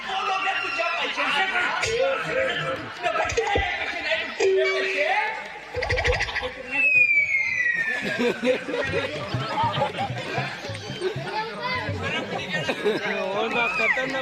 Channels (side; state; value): both; identical; correlation 1.00